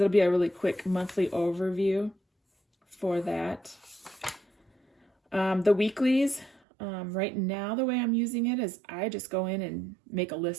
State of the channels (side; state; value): left; drops out; at 6.6 s